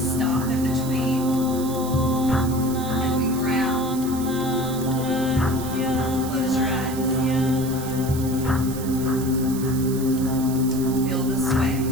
in between and we ground. Close your eyes. Feel the sway.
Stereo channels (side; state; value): right; noise; hiss, 12 dB below the sound